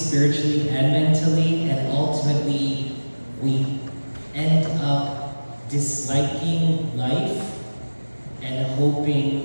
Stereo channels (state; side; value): inverted; both; correlation -1.00